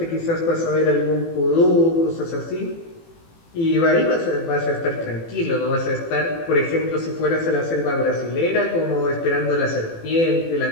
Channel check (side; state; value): right; late; 18 ms